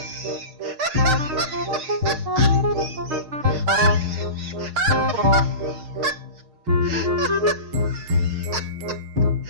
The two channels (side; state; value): left; late; 6.5 ms